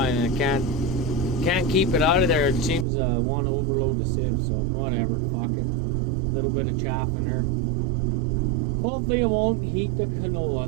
and I can't keep it out of there. It seems to want to overload the sieve, so whatever, fuck it. A little bit of chaff in there. Hopefully it won't heat the canola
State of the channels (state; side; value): drops out; left; at 2.9 s